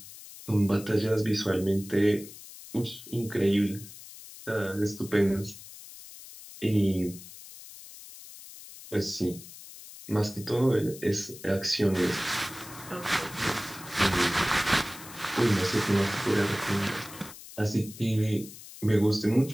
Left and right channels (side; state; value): left; noise; hiss, 16 dB below the sound